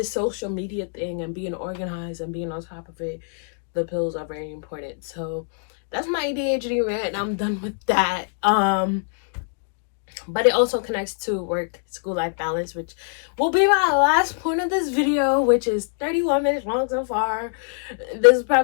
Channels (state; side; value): silent; right; digital silence